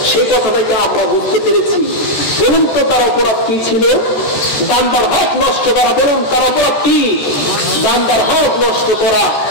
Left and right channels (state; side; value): late; right; 14 ms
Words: সে কথাটাকে আমরা বুঝতে পেরেছি। বলুন তো তার অপরাধ কি ছিল? বান্দার হক নষ্ট করা। বলুন তার অপরাধ কি? বান্দার হক নষ্ট করা।